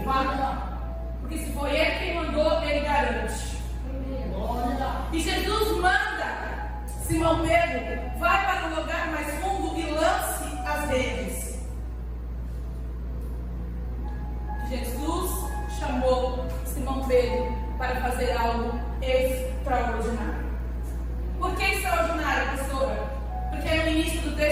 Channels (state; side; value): identical; both; correlation 1.00